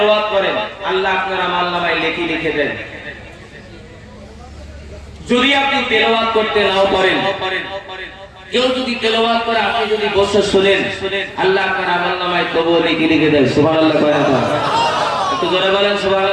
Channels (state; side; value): identical; both; correlation 1.00